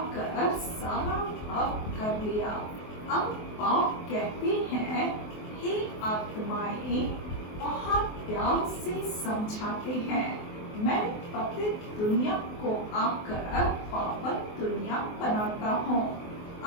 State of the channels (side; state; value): right; late; 24 ms